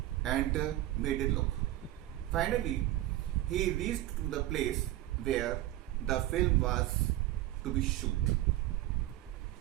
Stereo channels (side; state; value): left; quieter; 15.3 dB